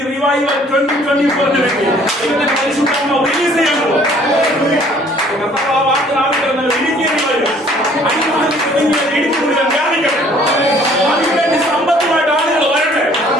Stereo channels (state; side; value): normal; both; correlation 0.57